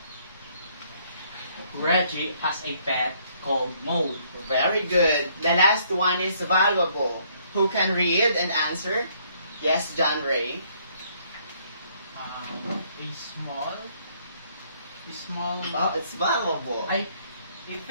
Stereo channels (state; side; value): inverted; both; correlation -0.66